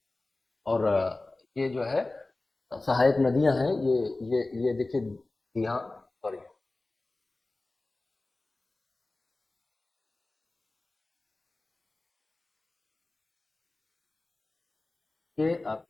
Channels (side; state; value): right; quieter; 3.1 dB